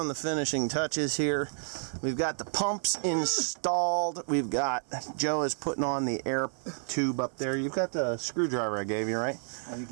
the finishing touches here. We've got the pumps installed. We've got, Joe is putting on the air tube up there. You've got the screwdriver I gave you, right? Oh, you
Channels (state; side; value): silent; left; 58 dB below the other